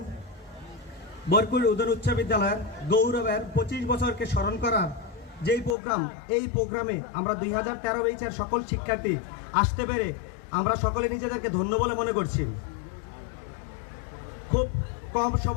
বরকুল উদর উচ্চ বিদ্যালয়ের গৌরবের 25 বছরকে স্মরণ করার যেই প্রোগ্রাম, এই প্রোগ্রামে আমরা 2013 ব্যাচের সকল শিক্ষার্থী আসতে পেরে আমরা সকলে নিজেদেরকে ধন্য বলে মনে করছি। খুব কম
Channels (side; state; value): right; drops out; at 5.8 s